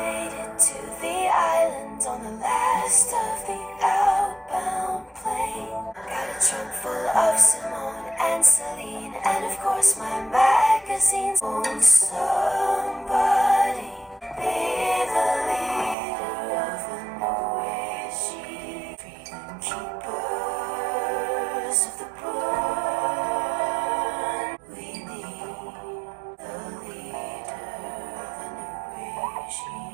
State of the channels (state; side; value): drops out; left; at 16.0 s